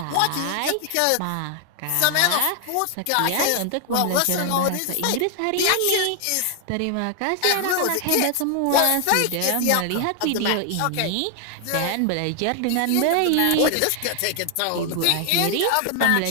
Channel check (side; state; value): both; different; correlation 0.00